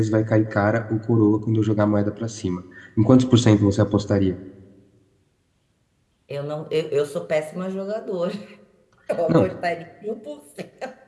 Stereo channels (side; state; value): both; identical; correlation 1.00